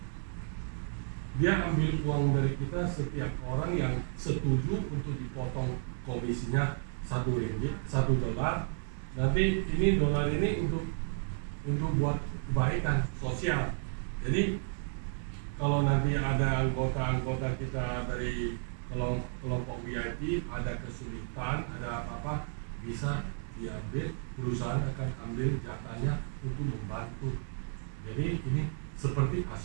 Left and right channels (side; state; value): left; silent; digital silence